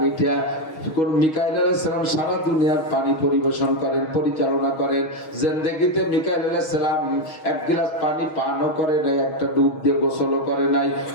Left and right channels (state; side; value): late; right; 6.3 ms